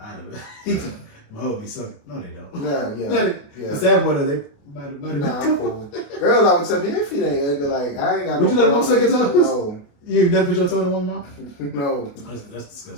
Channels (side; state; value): right; late; 28 ms